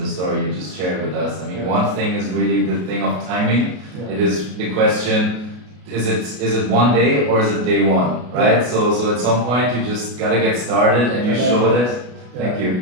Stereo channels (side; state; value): left; late; 33 ms